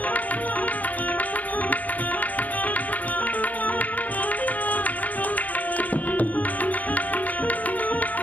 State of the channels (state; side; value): late; right; 0.077 ms